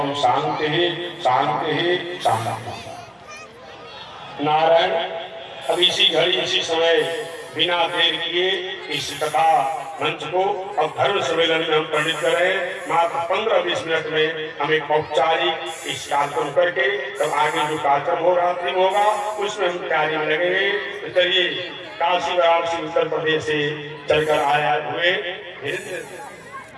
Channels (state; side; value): identical; both; correlation 1.00